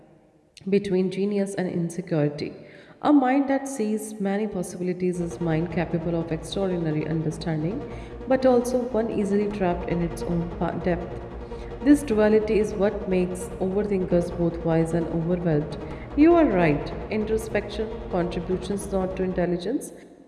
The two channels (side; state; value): both; identical; correlation 1.00